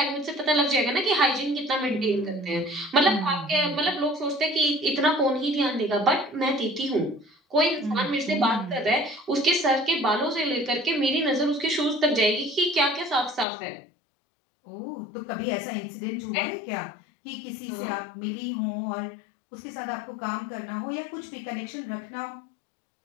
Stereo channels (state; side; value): drops out; right; at 13.5 s